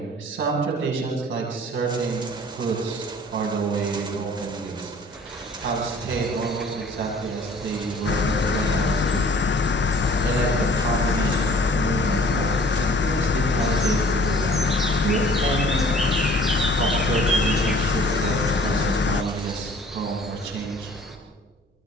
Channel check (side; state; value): both; normal; correlation 0.52